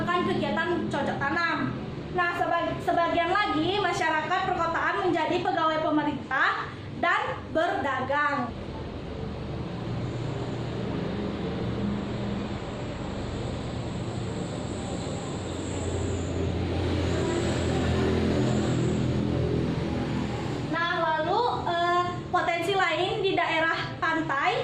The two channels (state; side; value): identical; both; correlation 1.00